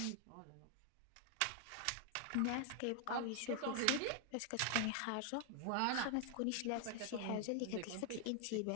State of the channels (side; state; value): both; different; correlation 0.00